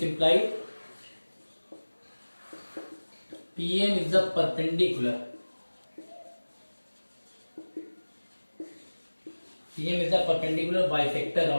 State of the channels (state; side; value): inverted; both; correlation -1.00